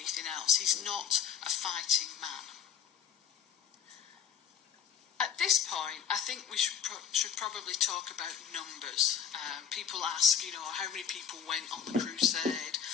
else. He's not a fighting man. At this point, I think we should probably talk about numbers. People ask, how many people went on the crusade?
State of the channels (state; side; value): quieter; right; 8.4 dB